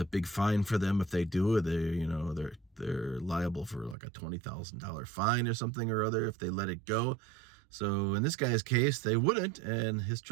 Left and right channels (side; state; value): left; drops out; at 4.0 s